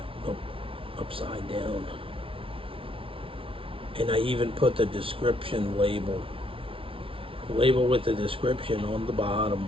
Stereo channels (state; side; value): late; left; 0.26 ms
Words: upside down. And I even put the description label with the description on the